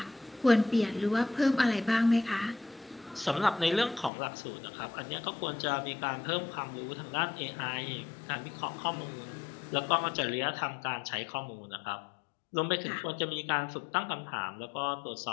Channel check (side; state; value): right; drops out; at 4.1 s